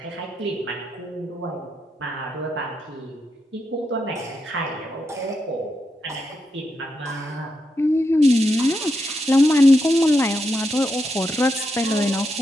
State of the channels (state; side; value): normal; both; correlation 0.84